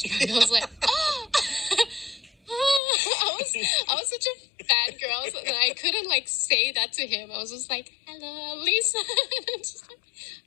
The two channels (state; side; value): drops out; right; at 2.8 s